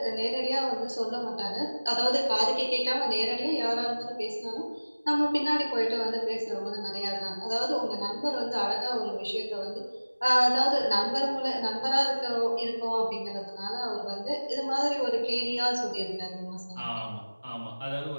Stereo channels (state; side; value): inverted; both; correlation -1.00